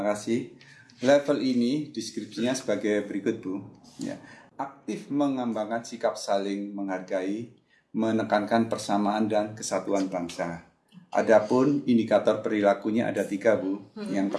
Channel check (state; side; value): identical; both; correlation 1.00